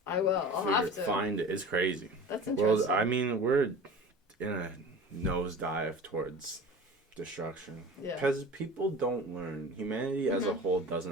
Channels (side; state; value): both; normal; correlation 0.37